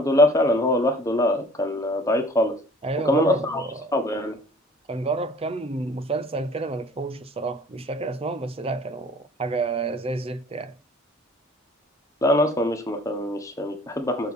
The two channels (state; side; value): normal; both; correlation 0.51